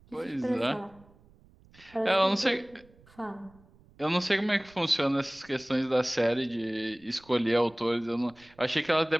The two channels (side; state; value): right; noise; rumble, 27 dB below the sound